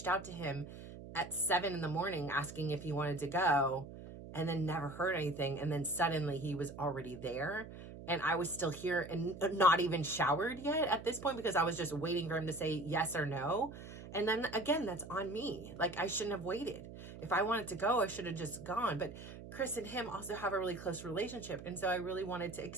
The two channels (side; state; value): right; noise; hum, 13 dB below the sound